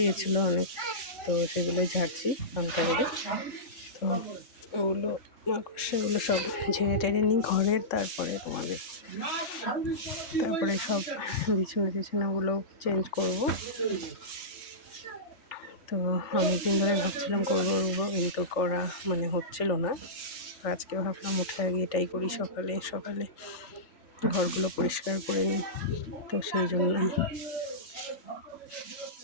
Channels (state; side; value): late; right; 3.5 ms